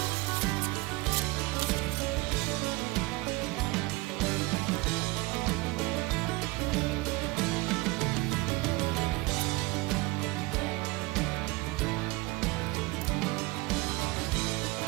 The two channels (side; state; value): left; quieter; 22.7 dB